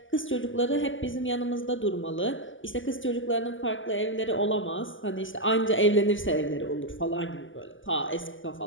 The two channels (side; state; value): right; late; 0.57 ms